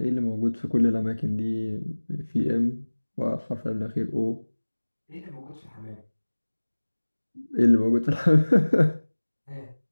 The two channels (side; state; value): both; inverted; correlation -1.00